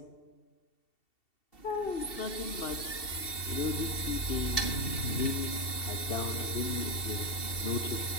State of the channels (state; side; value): late; right; 2.7 ms